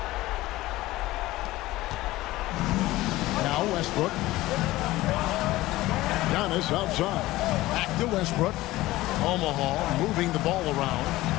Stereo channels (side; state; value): right; quieter; 17.6 dB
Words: Now Westbrook. Giannis outside. Back to Westbrook. Omaha moving the ball around.